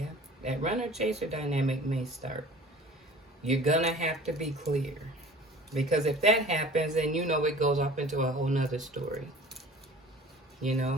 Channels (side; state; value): both; normal; correlation 0.45